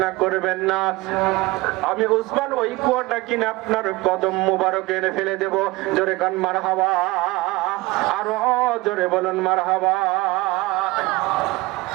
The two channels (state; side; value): quieter; left; 21.0 dB